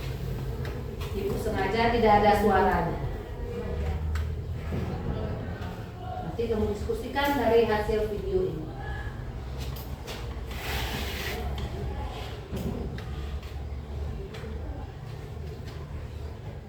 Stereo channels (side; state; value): both; identical; correlation 1.00